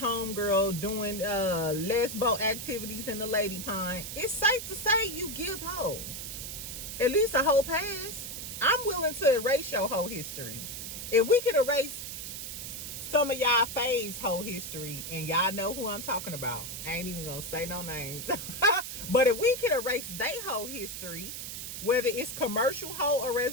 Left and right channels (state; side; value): noise; right; hiss, 7 dB below the sound